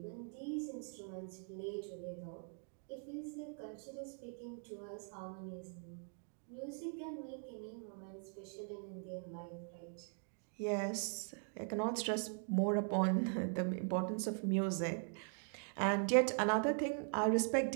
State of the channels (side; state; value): left; silent; 50 dB below the other